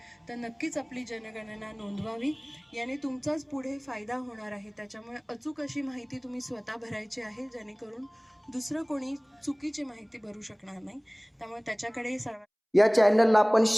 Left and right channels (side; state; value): both; identical; correlation 1.00